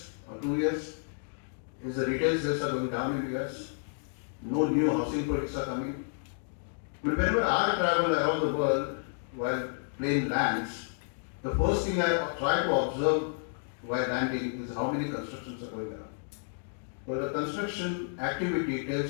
or 2 years is the retail sales are going down in the US. No new housing projects are coming. But whenever I travel around the world while plane lands, the first thing I try to observe while landing is how many constructions are going around. Well, the construction activity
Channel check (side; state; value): right; silent; digital silence